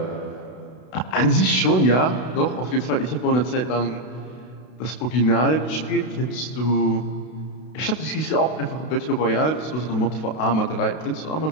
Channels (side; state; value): right; late; 32 ms